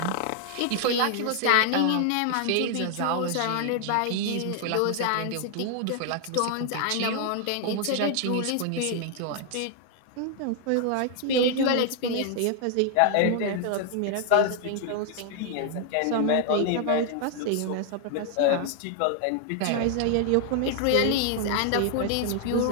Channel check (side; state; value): both; different; correlation 0.00